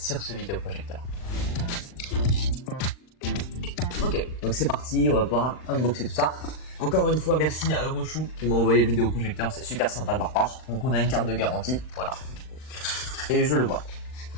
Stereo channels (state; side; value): late; right; 39 ms